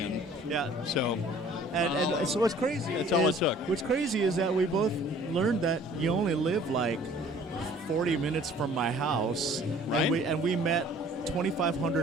Yeah. So, And so what's crazy That's all it is, took. what's crazy is that we both learned that you only live like 40 minutes from my house, Right. and we met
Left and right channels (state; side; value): normal; both; correlation 0.52